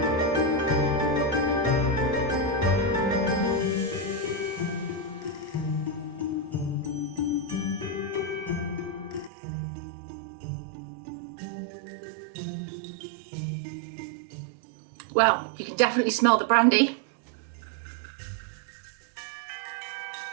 Well, you can definitely smell the brandy.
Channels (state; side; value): drops out; left; at 9.3 s